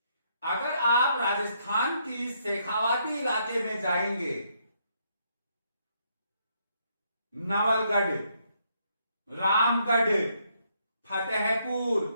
अगर आप राजस्थान की शेखावाटी इलाके में जाएंगे, नवलगढ़, रामगढ़, फतेहपुर,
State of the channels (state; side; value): inverted; both; correlation -0.73